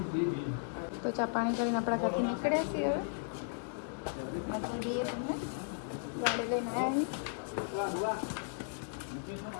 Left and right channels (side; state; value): right; silent; digital silence